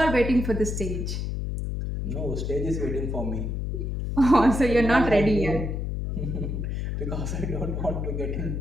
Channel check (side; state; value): left; noise; hum, 2 dB below the sound